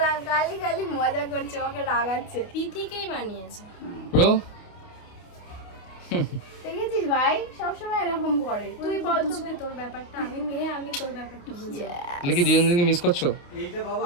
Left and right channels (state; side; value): late; right; 28 ms